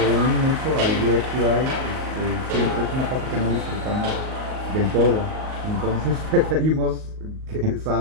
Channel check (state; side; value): late; left; 38 ms